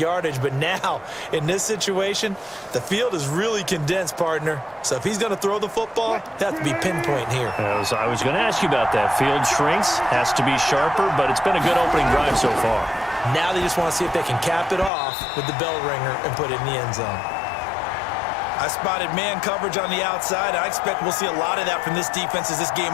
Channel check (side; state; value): right; drops out; at 14.9 s